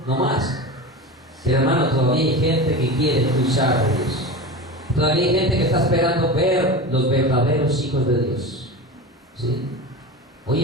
no más. Pero hermano, todavía hay gente que quiere escuchar a Dios. Todavía hay gente que está esperando ver los verdaderos hijos de Dios. ¿Sí? Hoy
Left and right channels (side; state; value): both; normal; correlation 0.28